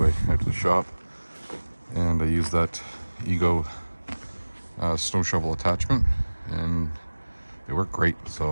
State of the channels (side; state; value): both; inverted; correlation -1.00